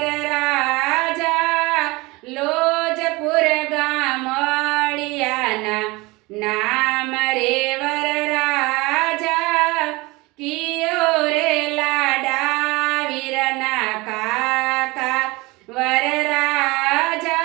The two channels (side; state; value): left; quieter; 23.1 dB